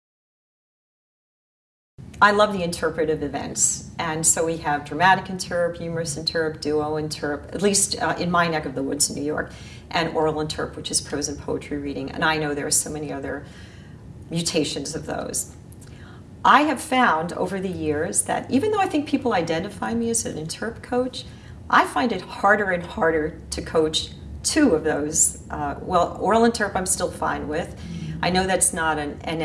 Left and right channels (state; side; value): identical; both; correlation 1.00